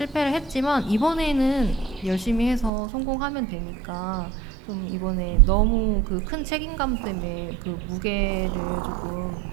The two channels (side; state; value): left; drops out; at 2.7 s